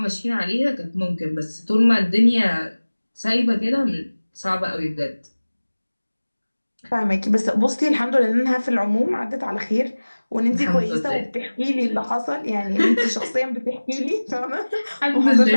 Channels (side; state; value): both; inverted; correlation -1.00